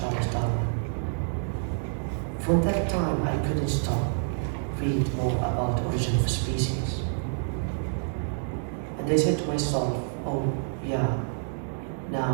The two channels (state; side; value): silent; left; digital silence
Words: Darwin. From that time, I couldn't stop read more about origin of species. And I said to myself, oh yeah,